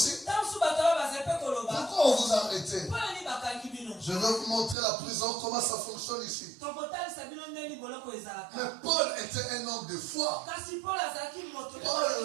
pourquoi on vous a arrêté? Je vais vous montrer la prison, comment ça fonctionne ici. Mais Paul était un homme de foi.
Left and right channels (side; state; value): left; drops out; at 4.8 s